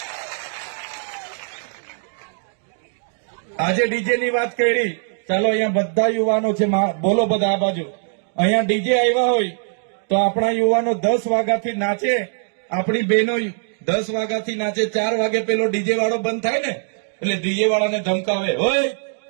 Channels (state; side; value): silent; left; digital silence